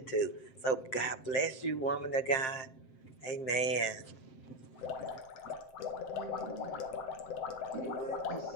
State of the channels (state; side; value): late; right; 7.6 ms